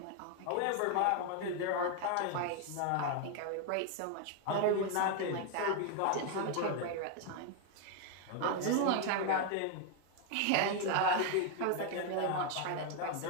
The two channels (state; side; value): different; both; correlation 0.01